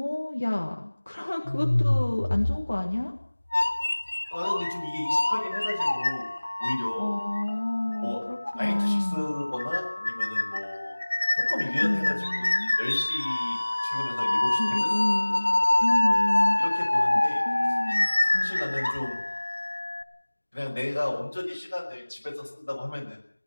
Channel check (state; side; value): inverted; both; correlation -1.00